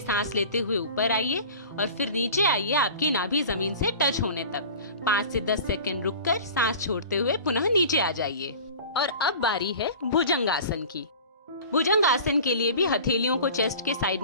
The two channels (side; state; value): both; inverted; correlation -0.39